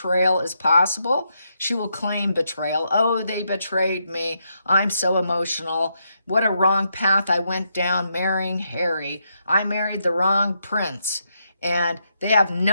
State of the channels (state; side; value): inverted; both; correlation -0.80